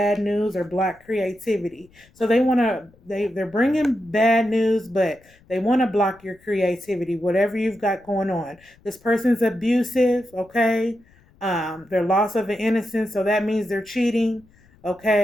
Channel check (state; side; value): noise; left; rumble, 30 dB below the sound